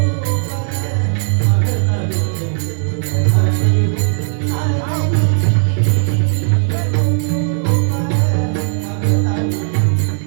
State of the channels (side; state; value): left; silent; digital silence